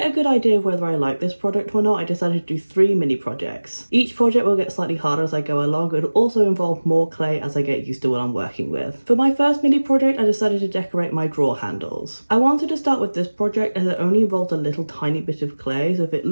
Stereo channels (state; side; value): inverted; both; correlation -1.00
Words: a good idea of whether I like this product or not, I decided to do 3 mini projects. Each project will get slightly harder as I go along, but it'll also involve more clay as I get used to what I'm working with. For my first mini project, I decided to decorate my drawer handles. I wanted to start with this project as it only involved a little tiny bit of clay, so if it